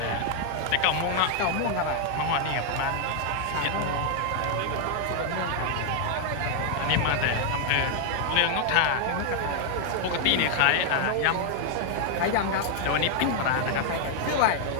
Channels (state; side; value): different; both; correlation 0.00